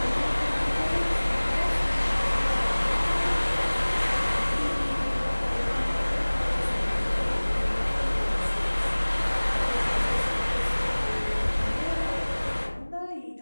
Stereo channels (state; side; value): inverted; both; correlation -1.00